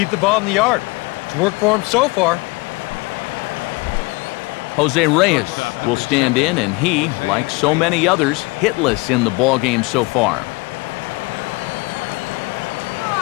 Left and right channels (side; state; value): right; quieter; 25.3 dB